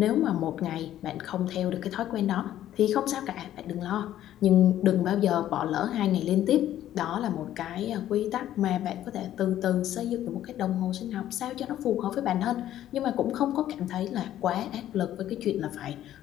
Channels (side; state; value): right; quieter; 12.3 dB